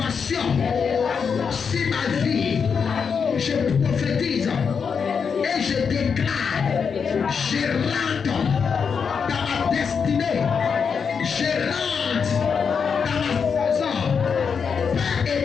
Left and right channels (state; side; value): quieter; right; 6.2 dB